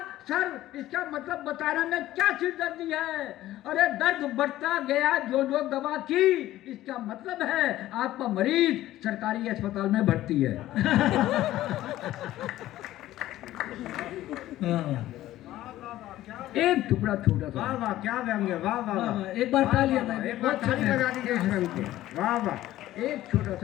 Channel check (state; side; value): quieter; right; 14.7 dB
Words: सर इसका मतलब बताने में क्या सिरदर्दी है। अरे दर्द बढ़ता गया जो जो दवा की, इसका मतलब है आपका मरीज सरकारी अस्पताल में भर्ती है। एक टुकड़ा छोटा सा। वाह वाह, क्या व्यंग्य, वाह वाह वाह। एक बार तालियां भाई, एक बार ताली बजा दीजिए इस व्यंग्य को। वाह वाह। एक छोटा